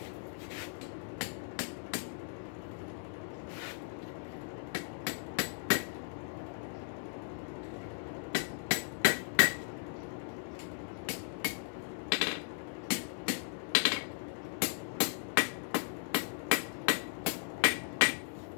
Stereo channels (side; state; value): right; silent; digital silence